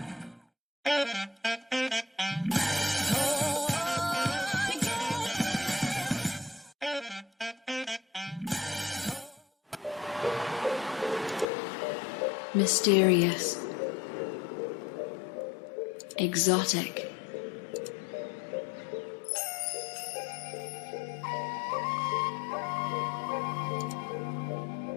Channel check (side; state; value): right; drops out; at 11.5 s